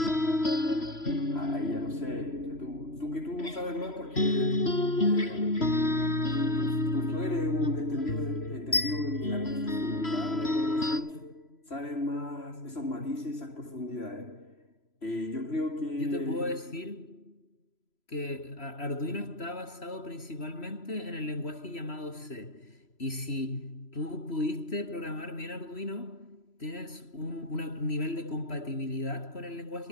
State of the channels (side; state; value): right; late; 3.0 ms